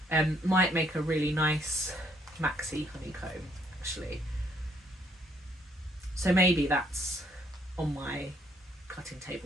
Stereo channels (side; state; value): both; normal; correlation 0.67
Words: might make a really nice maxi honeycomb, actually. So maybe that's on my cutting